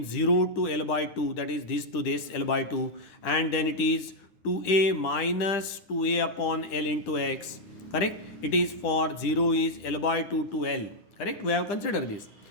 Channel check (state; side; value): late; right; 10 ms